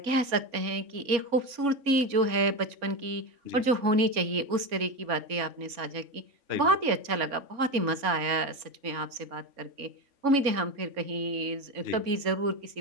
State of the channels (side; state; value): left; late; 3.5 ms